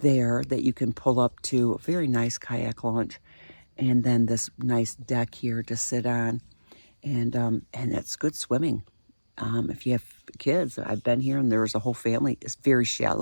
that you can pull up to, a very nice kayak launch, and then this nice deck here to sit on, and it's good swimming. If you have kids, I've been here and there was a whole family. It's very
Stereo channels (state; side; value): inverted; both; correlation -1.00